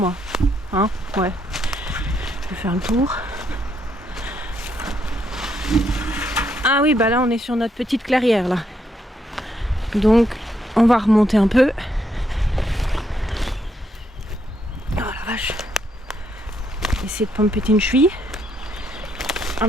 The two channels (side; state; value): both; normal; correlation 0.75